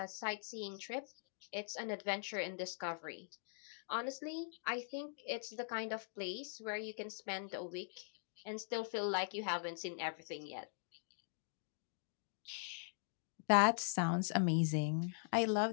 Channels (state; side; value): silent; right; digital silence